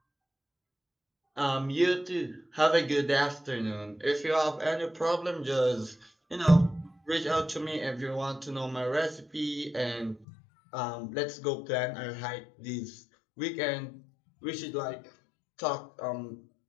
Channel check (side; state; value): right; drops out; at 10.2 s